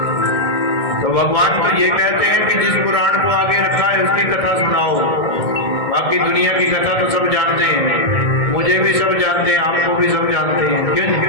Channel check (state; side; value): late; right; 1.6 ms